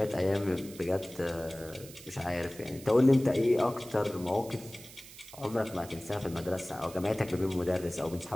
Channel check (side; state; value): right; noise; hiss, 17 dB below the sound